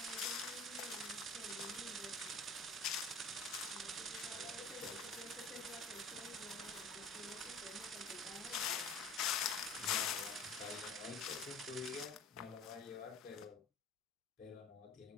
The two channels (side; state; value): right; quieter; 3.3 dB